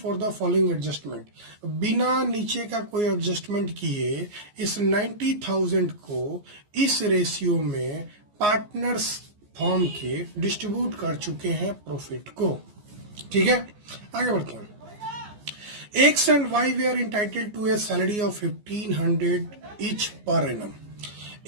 the following adjustment. बिना नीचे का कोई एडजस्टमेंट किए इस 90,000 को इस रेशियो में पार्टनर्स फर्म के डिस्ट्रीब्यूट कर चुके हैं प्रॉफिट को। ठीक है, आगे बढ़ते हैं। X and Y were entitled to a salary of 1500 each per annum।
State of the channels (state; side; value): late; left; 14 ms